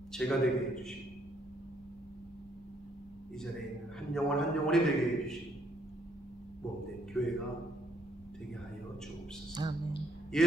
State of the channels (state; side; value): normal; both; correlation 0.69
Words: 제가 되게 해주시고, 이 자리에 있는 한 영혼 한 영혼이 되게 해주시고, 몸된 교회가 되게 하여 주옵소서. 아멘.